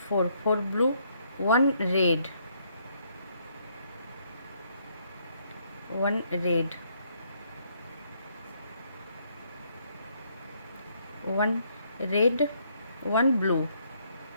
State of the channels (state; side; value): inverted; both; correlation -0.70